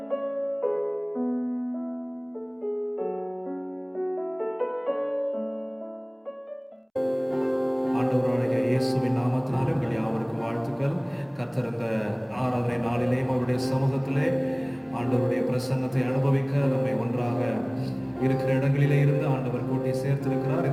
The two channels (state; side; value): identical; both; correlation 1.00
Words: இயேசுவின் நாமத்தினாலே உங்கள் யாவருக்கும் வாழ்த்துக்கள். கர்த்தர் இந்த ஆராதனை நாளிலேயும் அவருடைய சமூகத்திலே ஆண்டவருடைய பிரசன்னத்தை அனுபவிக்க நம்மை ஒன்றாக இருக்கிற இடங்களிலே இருந்து ஆண்டவர் கூட்டி சேர்த்திருக்கிறார்.